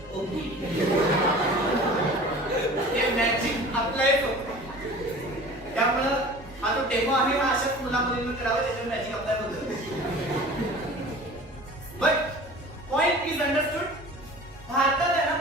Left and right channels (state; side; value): normal; both; correlation 0.41